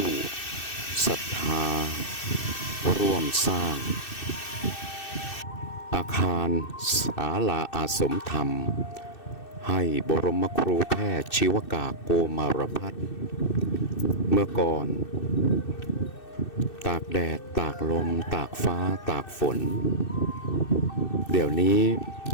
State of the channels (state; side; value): late; right; 2.6 ms